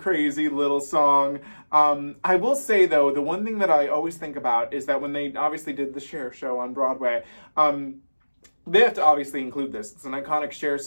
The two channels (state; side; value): inverted; both; correlation -1.00